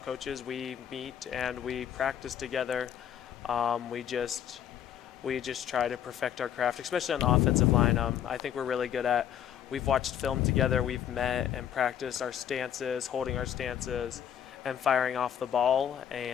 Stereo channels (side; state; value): right; quieter; 9.8 dB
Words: coaches, we meet and we practice together. We just try to perfect our craft, especially on the offensive line. I think we're really good at, we've watched film together, we've met and practiced our stances, holding our stances, and firing off the ball.